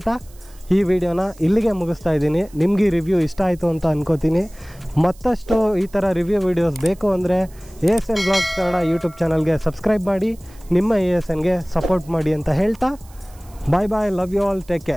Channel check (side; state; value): right; noise; hiss, 26 dB below the sound